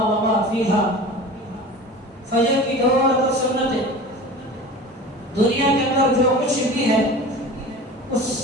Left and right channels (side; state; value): both; normal; correlation 0.37